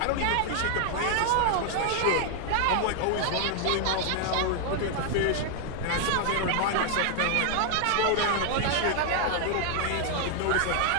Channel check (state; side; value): different; both; correlation 0.00